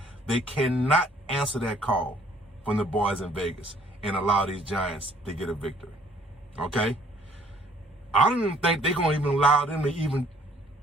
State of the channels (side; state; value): both; normal; correlation 0.60